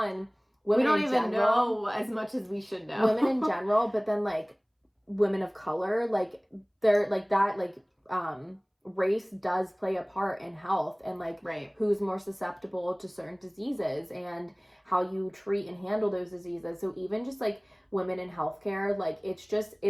we don't even general, know as much as we should know. Women in general, but then like women of color, like they're like that, like race does play a part in health and like who's more susceptible to certain diseases and how you treat and handle those diseases. So even just like women in healthcare, like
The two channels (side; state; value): both; identical; correlation 1.00